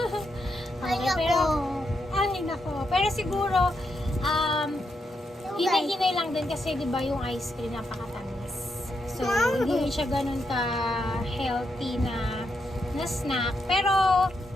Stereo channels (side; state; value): both; normal; correlation 0.82